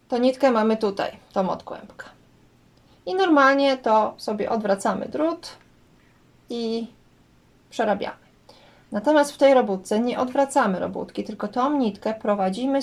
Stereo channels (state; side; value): identical; both; correlation 1.00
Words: to nitkę mamy tutaj, tą od kłębka. I normalnie to sobie odwracamy drut i przerabiamy. Natomiast w tej robótce nie odwracamy robótki, tylko tą nitkę